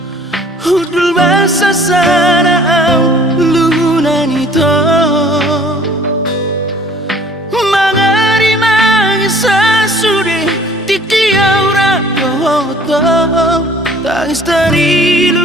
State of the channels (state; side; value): normal; both; correlation 0.54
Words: hudul basa sana au lunan ito to tangis dari